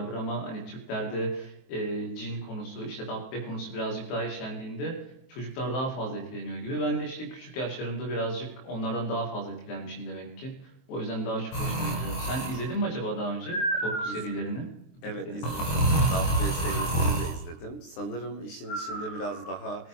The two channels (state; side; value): late; right; 23 ms